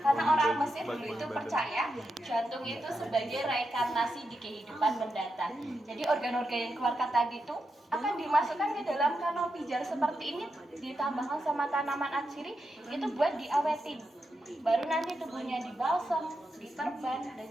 orang Mesir dulu itu percaya jantung itu sebagai reinkarnasi di kehidupan mendatang. Jadi organ-organ yang keluarkan tadi itu akan dimasukkan ke dalam kanopi jar seperti ini, ditambahkan sama tanaman atsiri itu buat diawetin. Baru nanti tubuhnya dibalsem, diperban, dan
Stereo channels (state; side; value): normal; both; correlation 0.86